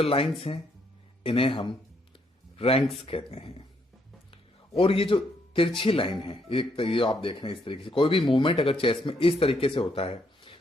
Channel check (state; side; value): normal; both; correlation 0.73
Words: लाइंस हैं इन्हें हम रैंक्स कहते हैं। और ये जो तिरछी लाइन है, ये आप देख रहे हैं इस तरीके से, कोई भी मूवमेंट अगर चेस में इस तरीके से होता है